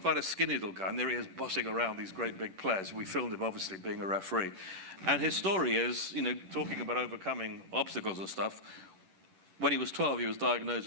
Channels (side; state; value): left; late; 11 ms